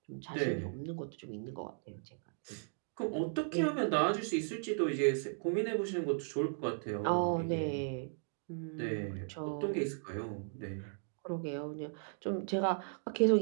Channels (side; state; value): left; silent; digital silence